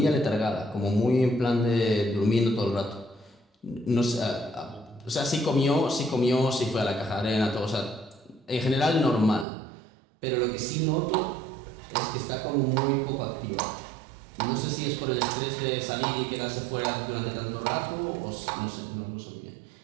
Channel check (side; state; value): left; drops out; at 9.5 s